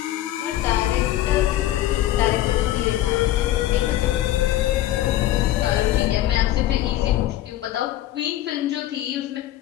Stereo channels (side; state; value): right; quieter; 13.9 dB